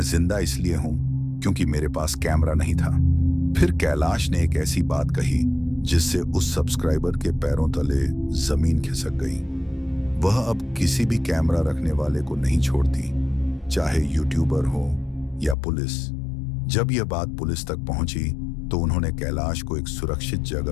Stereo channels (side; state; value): right; drops out; at 15.6 s